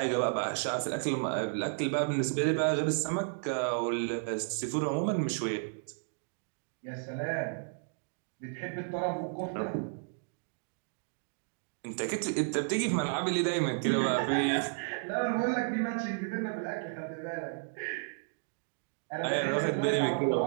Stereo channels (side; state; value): left; silent; digital silence